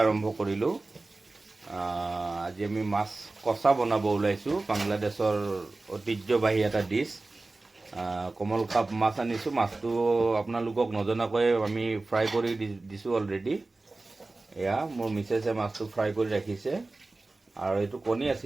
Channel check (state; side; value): quieter; left; 3.3 dB